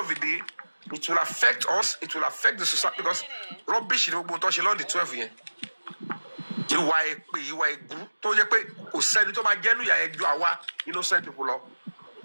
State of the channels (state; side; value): inverted; both; correlation -1.00